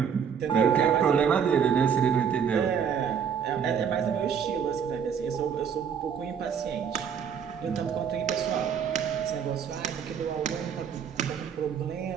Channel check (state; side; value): quieter; left; 7.4 dB